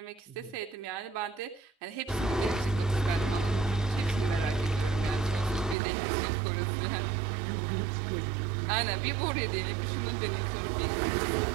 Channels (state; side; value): drops out; left; at 5.8 s